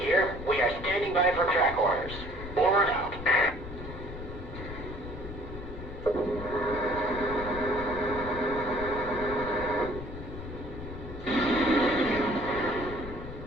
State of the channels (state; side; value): noise; left; rumble, 10 dB below the sound